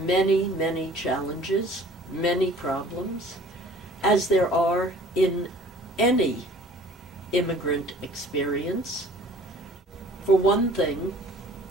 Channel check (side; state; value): both; normal; correlation 0.50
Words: many, many challenges, many problems, as there are in any immigrant experience. For one thing,